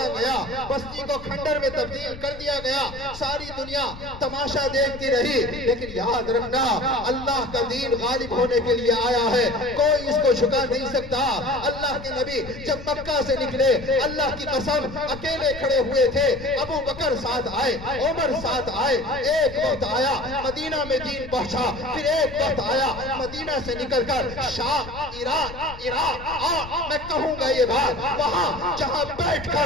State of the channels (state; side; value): noise; left; rumble, 14 dB below the sound